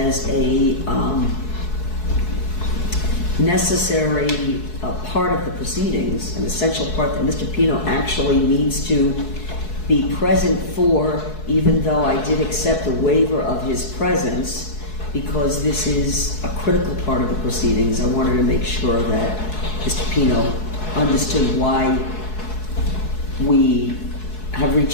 a necessary part of the proceedings, an essential part that Mr. Pino actually needs to be present for, even though I did accept a waiver of his presence, because this is a critical part of the proceedings. I wanted to make sure that Mr. Pino understood why we have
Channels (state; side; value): late; right; 4.7 ms